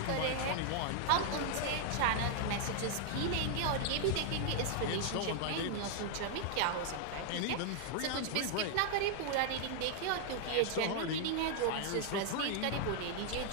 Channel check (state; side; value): different; both; correlation 0.00